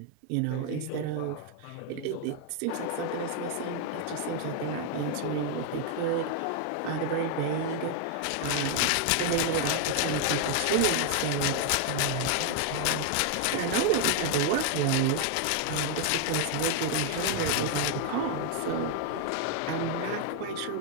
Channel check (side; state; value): both; different; correlation 0.01